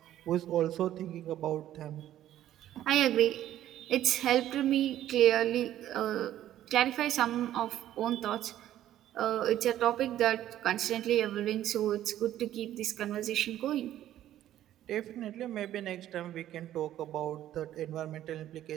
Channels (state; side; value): quieter; left; 12.5 dB